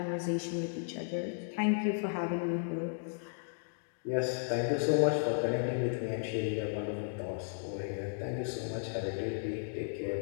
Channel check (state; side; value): silent; right; digital silence